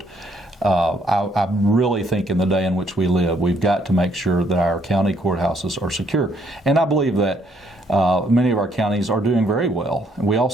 I really think in the day in which we live, we've got to make sure that our county courthouses are secure. And I believe that many of our counties are doing very well. We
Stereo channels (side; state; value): both; normal; correlation 0.68